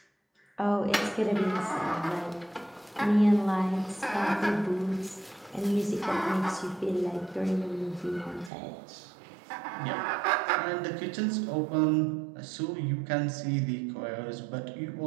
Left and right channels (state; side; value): drops out; left; at 8.5 s